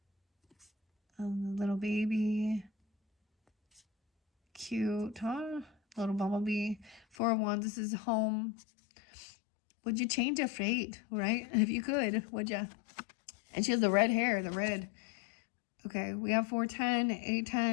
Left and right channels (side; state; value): right; drops out; at 7.2 s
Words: The little baby. Cute, huh? Little bumblebee. 4 of Wands. This is home. Would you change a fate, right? If you could, would you? And she has the red hair, the red. Okay, we have 410,